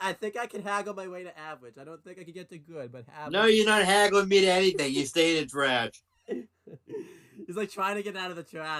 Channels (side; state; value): both; identical; correlation 1.00